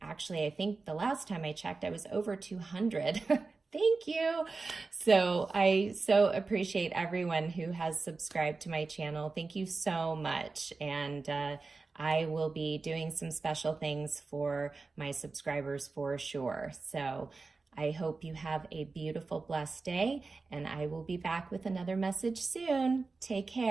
think the last time I checked, I was over 200. Thank you. So I so appreciate everyone who has subscribed to my channel. Thank you so much. And I will be doing some special things for my subscribers for sure. So I hope you have a beautiful, blessed day, and I will be back with another message soon. Take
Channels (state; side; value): quieter; left; 4.0 dB